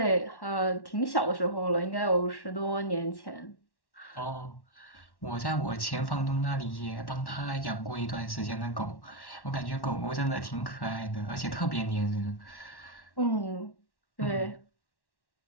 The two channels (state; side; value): late; right; 1.1 ms